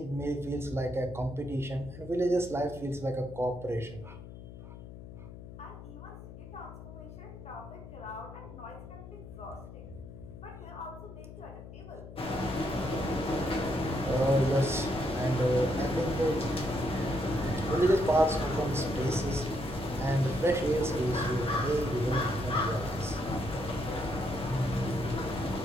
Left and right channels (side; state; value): left; noise; hum, 14 dB below the sound